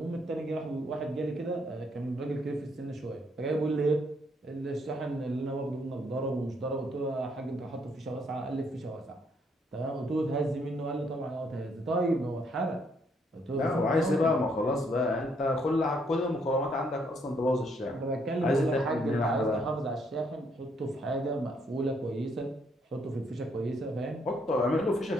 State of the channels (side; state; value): both; normal; correlation 0.71